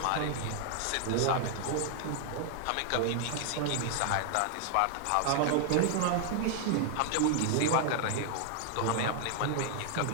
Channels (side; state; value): both; different; correlation 0.00